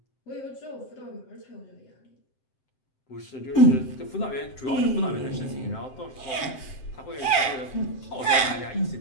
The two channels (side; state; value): right; late; 7.7 ms